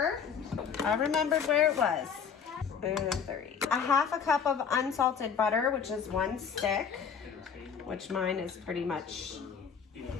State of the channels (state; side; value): quieter; right; 6.8 dB